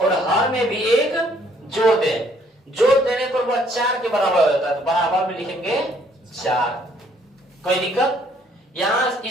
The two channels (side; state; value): both; normal; correlation 0.64